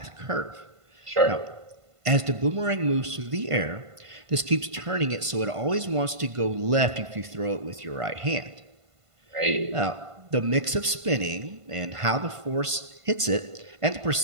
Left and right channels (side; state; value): left; late; 1.5 ms